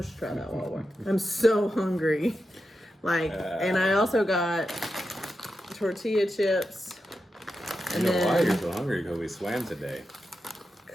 to try that while we're... I'm so hungry. And I also got tortilla chips. And you know why you're so hungry? Because we swam today.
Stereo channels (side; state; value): both; normal; correlation 0.89